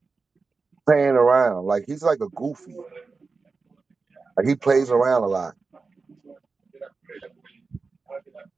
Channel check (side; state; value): left; quieter; 4.3 dB